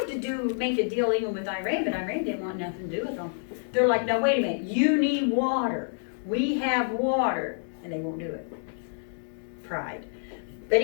to make a deal even with Iran, but Iran didn't want nothing to do with them. They're like, no, wait a minute, you need water. We have water, and they won't do it. Pride. But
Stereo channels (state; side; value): silent; right; digital silence